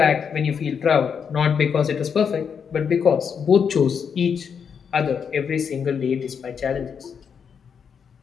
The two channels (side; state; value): right; quieter; 6.9 dB